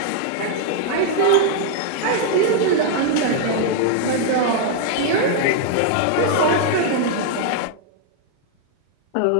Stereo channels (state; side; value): different; both; correlation 0.00